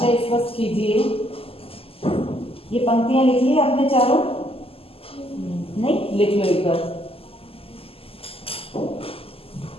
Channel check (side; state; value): right; late; 0.28 ms